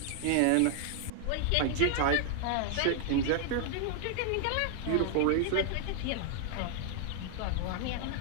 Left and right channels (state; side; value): different; both; correlation -0.01